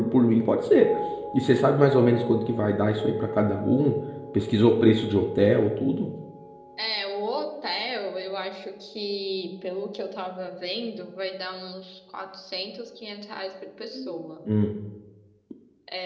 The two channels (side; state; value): both; identical; correlation 1.00